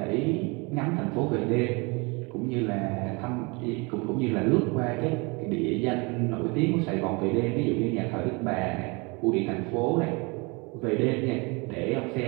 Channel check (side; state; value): left; quieter; 28.6 dB